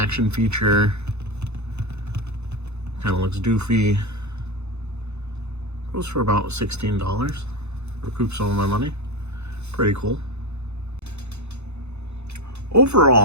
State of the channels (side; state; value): left; late; 0.81 ms